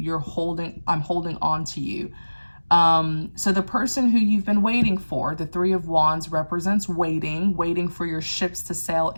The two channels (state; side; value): inverted; both; correlation -1.00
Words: I'm holding on to you. So the person who you've been waiting for, the Three of Wands represents waiting for your ships to sail